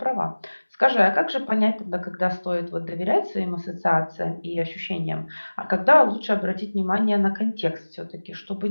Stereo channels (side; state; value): both; inverted; correlation -1.00